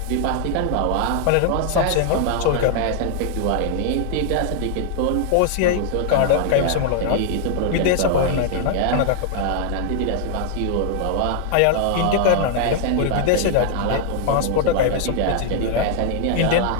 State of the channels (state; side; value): different; both; correlation 0.00